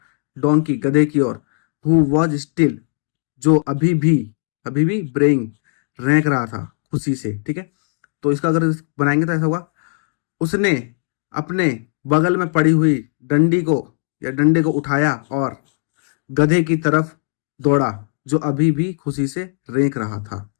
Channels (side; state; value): right; silent; 62 dB below the other